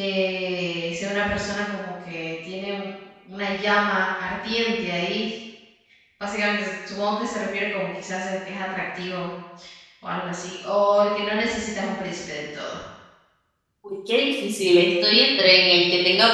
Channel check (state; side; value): identical; both; correlation 1.00